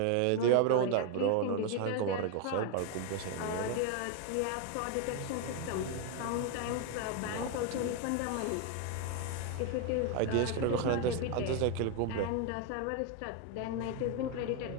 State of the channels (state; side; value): different; both; correlation 0.01